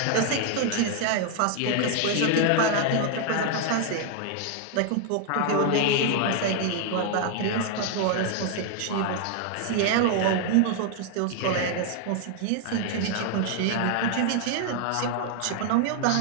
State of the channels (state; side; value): different; both; correlation 0.00